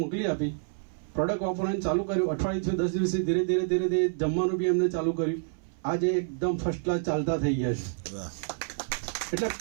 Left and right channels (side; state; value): left; silent; 59 dB below the other